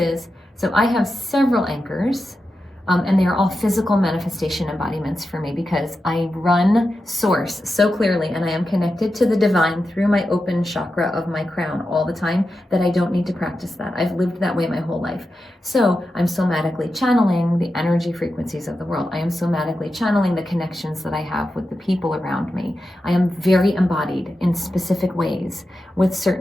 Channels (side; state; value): both; normal; correlation 0.90